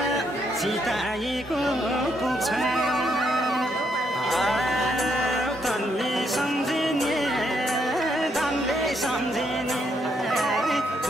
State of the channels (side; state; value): both; normal; correlation 0.75